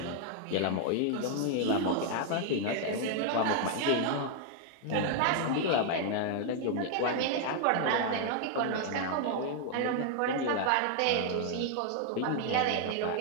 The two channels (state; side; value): different; both; correlation 0.00